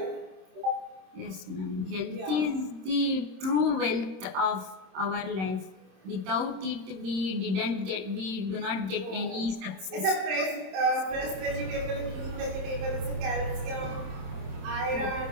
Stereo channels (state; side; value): late; left; 27 ms